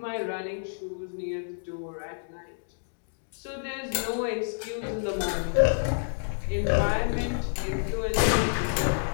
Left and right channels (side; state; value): right; silent; digital silence